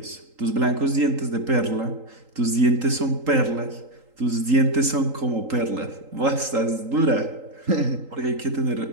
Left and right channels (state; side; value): late; left; 3.8 ms